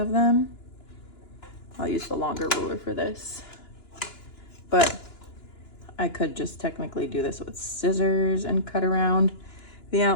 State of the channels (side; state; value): right; late; 2.9 ms